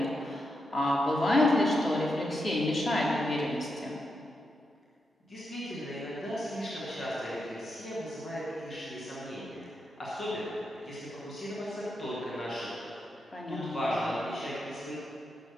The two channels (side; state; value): both; normal; correlation 0.84